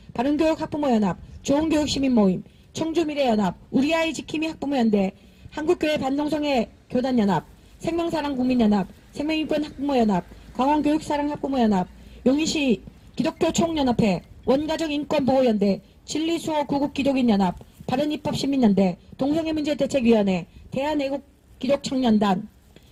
바른교육학부모연합, 좋은교육시민모임, 청주미래연합, 우리아이 지킴이 학부모연대, 한국교회 반동성애 교단연합, 생명사랑국민연합, 생명인권학부모연합, 강원교육사랑학부모연합, 용인시 기독교 총연합회, 원가족인권보호연대, 진리수호 구국기독인연합, 바른입법시민연대, 동성애문제대책위원회, 대한애국기독청년단,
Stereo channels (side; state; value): both; identical; correlation 1.00